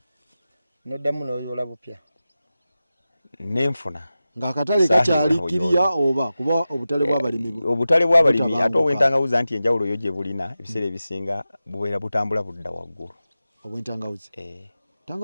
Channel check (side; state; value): both; inverted; correlation -0.94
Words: noddamu n'oyola bupya nenfuna ng'akatale kakyali kiriya oba kuba obutale bw'abalimi ate obw'entangawuzi anti enjawulo yo gye bulina ebiseera ebisinga bubeera butambula budda waggulu obw'entangawuzi